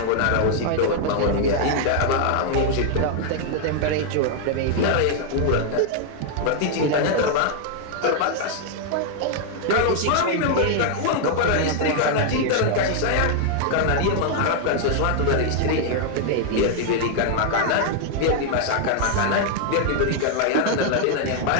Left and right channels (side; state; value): both; different; correlation 0.00